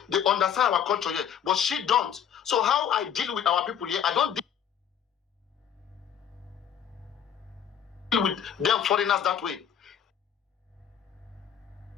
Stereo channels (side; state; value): right; quieter; 8.7 dB